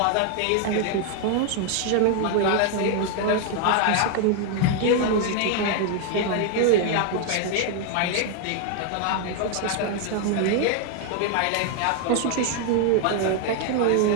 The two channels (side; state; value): both; different; correlation 0.01